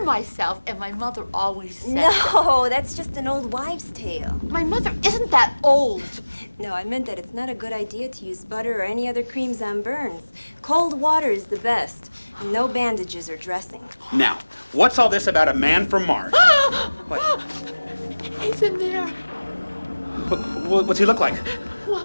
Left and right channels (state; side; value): inverted; both; correlation -1.00